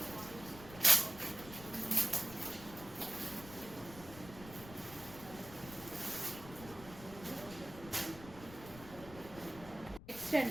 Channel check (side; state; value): left; noise; rumble, 15 dB below the sound